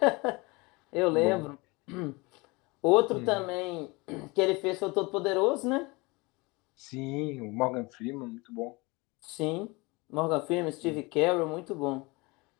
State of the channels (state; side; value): quieter; right; 25.2 dB